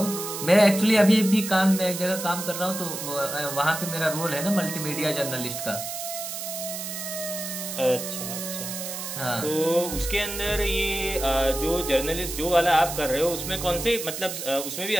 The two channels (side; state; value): right; noise; hiss, 6 dB below the sound